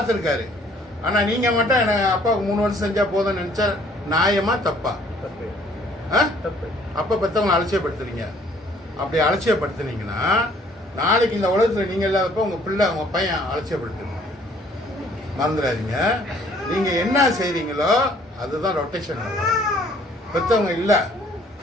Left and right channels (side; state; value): both; normal; correlation 0.59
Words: ஆனா நீங்க மட்டும் எனக்கு அப்பாவுக்கு 3 வருஷம் செஞ்சா போதும்னு நினைச்சா நியாயமா தப்பா? அப்ப பெத்தவங்களை அலட்சியப்படுத்துறீங்க. அப்படி அலட்சியப்படுத்துனீங்கன்னா நாளைக்கு இந்த உலகத்துல நீங்க இல்லாதப்ப உங்க பிள்ளை உங்க பையன் அலட்சியப்படுத்துங்க. மறந்துடாதீங்க. நீங்க என்ன செய்றீங்களோ அதுதான் ரொட்டேஷன். பெத்தவங்க இல்லை,